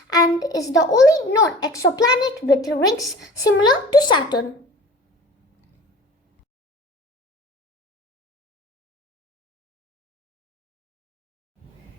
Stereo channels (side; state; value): both; normal; correlation 0.42